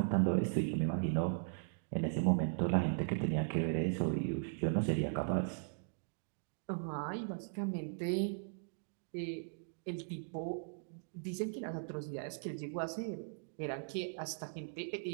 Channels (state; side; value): silent; left; digital silence